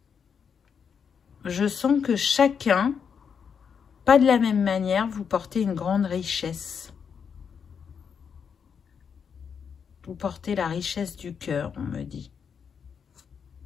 Je sens que chacun, pas de la même manière, vous portez une grande richesse. Vous portez la richesse du cœur, on me dit.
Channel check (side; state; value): right; quieter; 6.8 dB